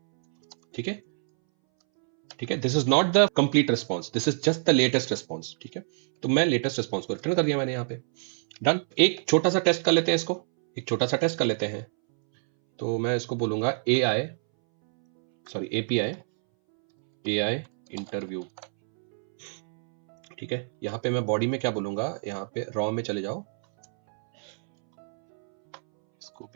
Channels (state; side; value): silent; left; 61 dB below the other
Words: ठीक है, ठीक है, this is not the complete response, this is just the latest response. ठीक है, तो मैं लेटेस्ट रिस्पॉन्स को रिटर्न कर दिया मैंने यहाँ पे। डन। एक छोटा सा टेस्ट कर लेते हैं इसको, एक छोटा सा टेस्ट कर लेते हैं। तो मैं इसको बोलूंगा एपीआई इंटरव्यू। ठीक है, यहां पे मैं बॉडी में क्या बोलूंगा, यहां पे रॉ में चले जाओ, इसको